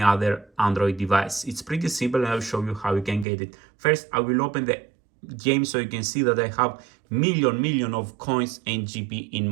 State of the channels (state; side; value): drops out; left; at 3.2 s